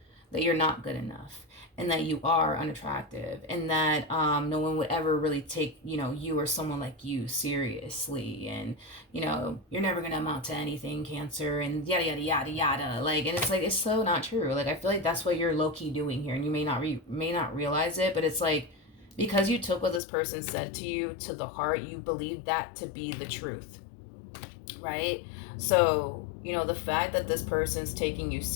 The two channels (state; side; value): drops out; right; at 20.0 s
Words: that you're not good enough and that you are unattractive and that no one would ever really take you or someone like you seriously, and you're never gonna amount to anything, Cancer, and yada yada yada yada. Like, and it's like, it's so not true. Like, I feel like that's what you're low-key doing here, and you may not realize it, but it's like, because you took what this person said to you to the heart, you believe that to be the truth, right? So, the fact that this person's taking you